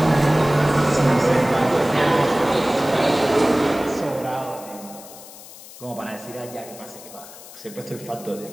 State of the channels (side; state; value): left; noise; hiss, 17 dB below the sound